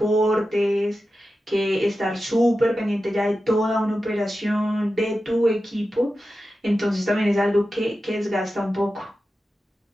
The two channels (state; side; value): normal; both; correlation 0.92